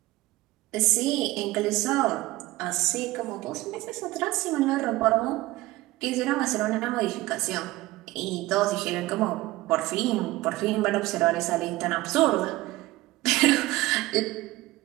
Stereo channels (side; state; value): left; quieter; 18.5 dB